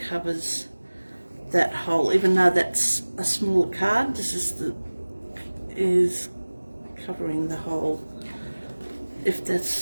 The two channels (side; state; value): both; inverted; correlation -1.00